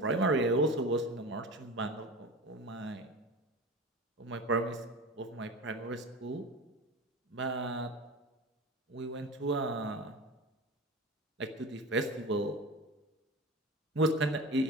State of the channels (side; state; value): both; normal; correlation 0.31